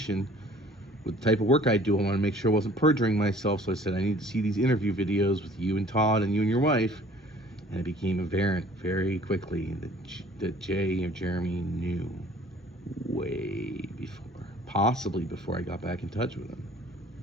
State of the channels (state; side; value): normal; both; correlation 0.53